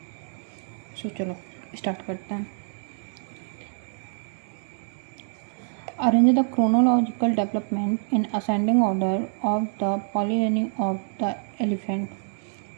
सो चलो स्टार्ट करते हैं। Arrange the chronological development in ascending order of the polynymy of the elephant।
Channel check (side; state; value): left; silent; digital silence